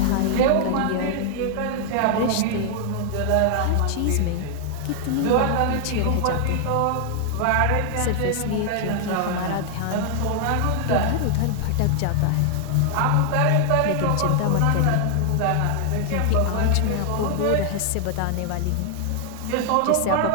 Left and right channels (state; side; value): different; both; correlation 0.00